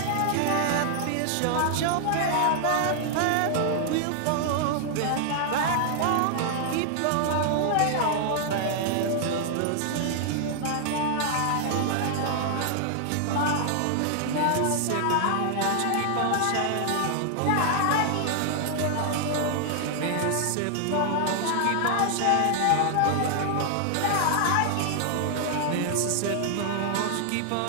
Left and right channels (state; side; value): different; both; correlation 0.00